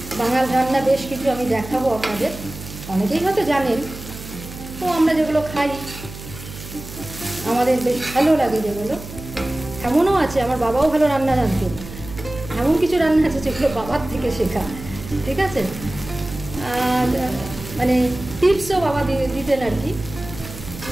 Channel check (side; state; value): right; noise; hum, 13 dB below the sound